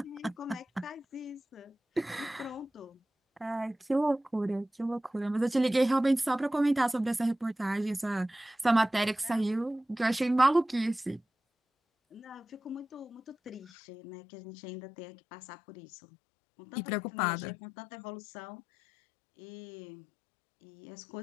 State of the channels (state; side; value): drops out; right; at 13.7 s